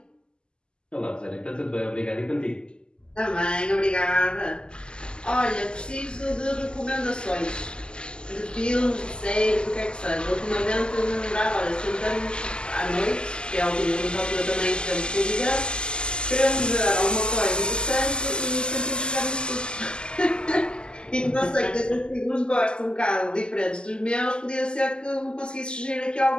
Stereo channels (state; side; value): late; right; 0.048 ms